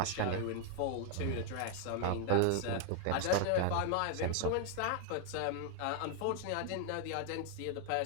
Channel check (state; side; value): different; both; correlation 0.00